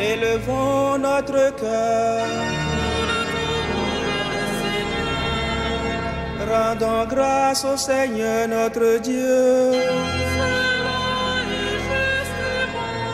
notre cœur. Rendons grâce au Seigneur notre Dieu.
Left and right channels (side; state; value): both; identical; correlation 1.00